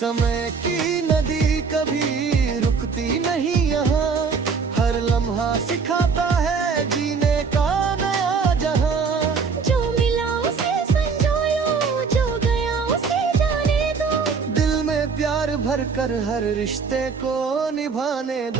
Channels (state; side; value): quieter; left; 5.3 dB